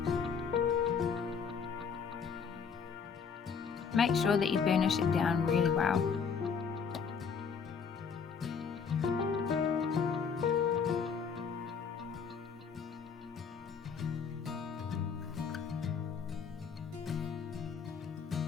Make sure that you burnish it down really well.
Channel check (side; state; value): right; quieter; 6.2 dB